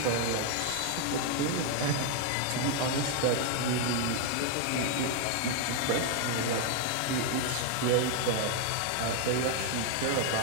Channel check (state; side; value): different; both; correlation 0.00